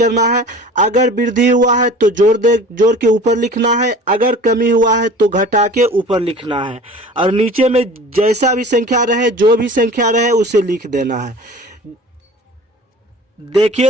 है। अगर वृद्धि हुआ है तो जोड़ के ऊपर लिखना है, अगर कमी हुआ है तो घटा के ऊपर लिखना है, और नीचे में जैसा भी संख्या रहे, जो भी संख्या रहे उसे लिख देना है।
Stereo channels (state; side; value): normal; both; correlation 0.42